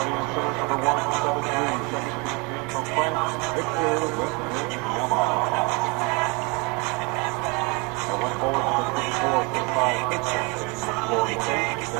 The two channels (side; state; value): left; quieter; 29.5 dB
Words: in center, number 1, 7'3", 17 from France, Victor Wembanyama. And one forward, number 24, 6'5", 6'6", Florida State,